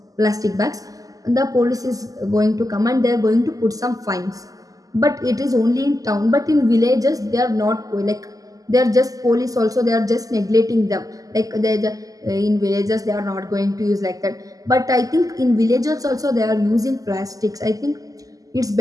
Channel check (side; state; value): left; late; 0.17 ms